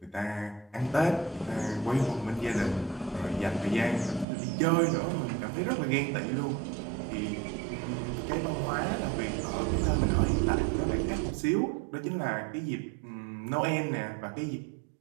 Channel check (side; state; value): left; drops out; at 4.2 s